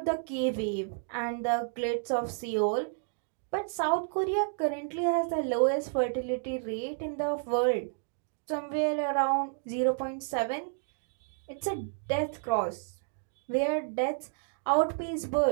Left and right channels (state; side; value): silent; left; digital silence